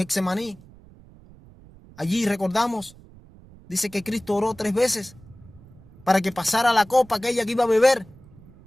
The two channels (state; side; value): noise; right; rumble, 23 dB below the sound